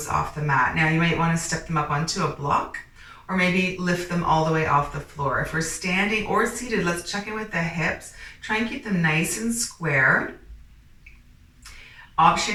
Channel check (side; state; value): both; identical; correlation 1.00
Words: off the mat. Now you might want to step them up onto a block or maybe lift them all the way off the floor. If we're standing or seated, let's check in with the hips. Try and keep them nice and square. Option